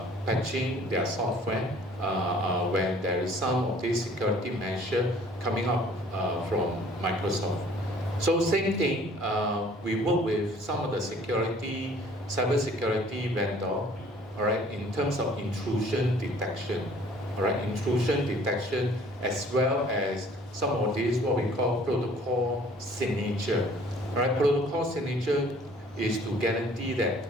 patching their software when there is some of these security measure coming up from Microsoft. So same thing, we work with some of the cyber security vendor, all right, in terms of intrusion detection. all right, intrusion detection, as well as some of these what we call protocol signature. All right, protocol signature is to guarantee that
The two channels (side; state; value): both; normal; correlation 0.54